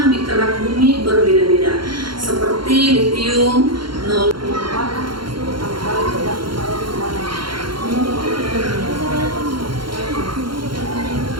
di kerak bumi berbeda-beda, seperti litium 0.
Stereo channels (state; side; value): late; left; 0.73 ms